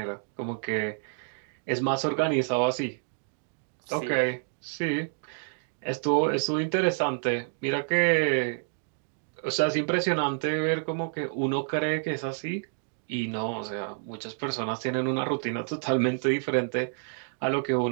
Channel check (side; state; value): left; silent; 59 dB below the other